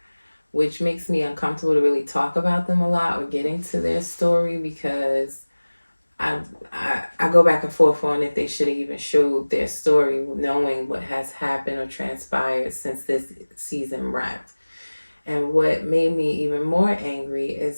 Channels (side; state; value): both; inverted; correlation -1.00